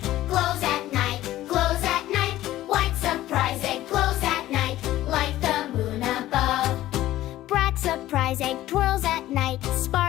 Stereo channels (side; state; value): right; quieter; 14.8 dB